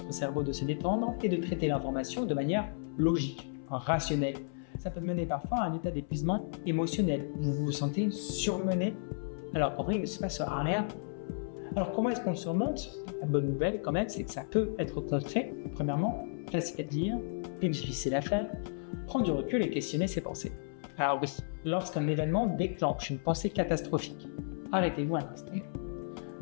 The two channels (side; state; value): right; silent; 56 dB below the other